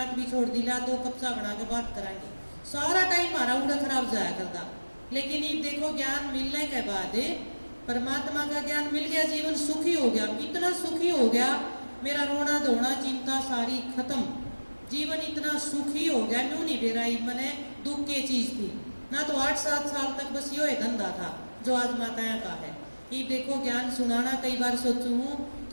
भी छोड़ दी, ला तो कब्जा बना के बात कराएंगे, सारा टाइम हमारा उड़ा खराब जाया करता। लेकिन ये देखो ज्ञान मिलने के बाद परमात्मा का ज्ञान मिल गया, जीवन सुखी हो गया। इतना सुखी हो गया, मेरा रोना धोना चिंता सारी खत्म, जीवन इतना सुखी हो गया। न्यू नहीं बेराई मैंने दुख की चीज थी ना, तो 8-7 साल तक बस यो धंधा था जो आज माताया का है। ये देखो ज्ञान सुनाना, कई बार सोचू हूँ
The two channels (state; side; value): inverted; both; correlation -1.00